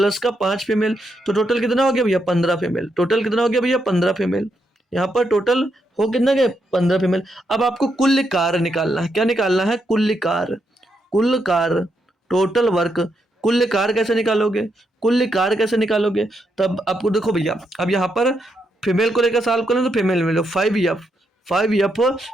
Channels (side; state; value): both; normal; correlation 0.80